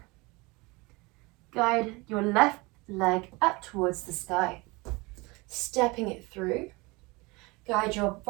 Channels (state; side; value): quieter; left; 24.9 dB